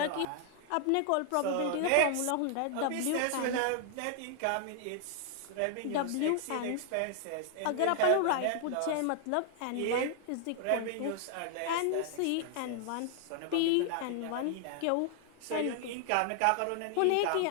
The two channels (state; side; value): different; both; correlation 0.00